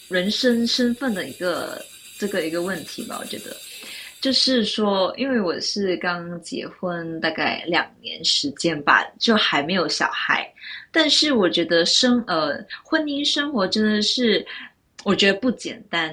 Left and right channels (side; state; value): both; identical; correlation 1.00